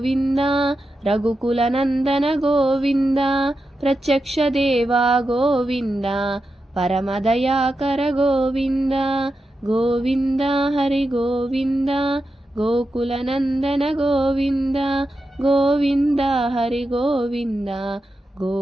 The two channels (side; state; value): both; normal; correlation 0.89